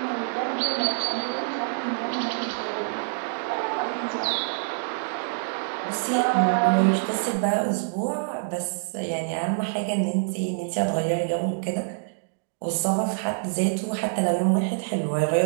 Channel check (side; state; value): left; silent; digital silence